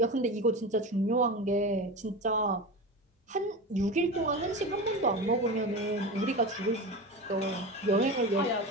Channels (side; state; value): both; normal; correlation 0.26